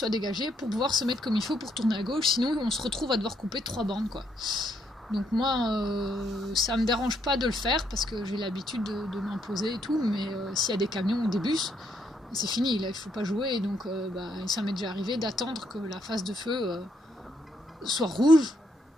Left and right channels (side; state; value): both; normal; correlation 0.74